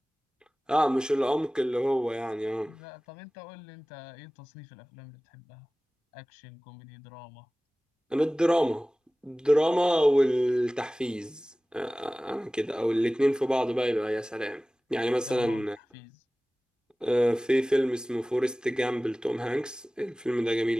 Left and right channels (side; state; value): both; normal; correlation 0.98